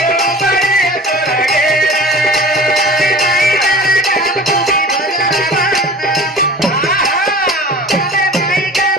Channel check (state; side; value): normal; both; correlation 0.40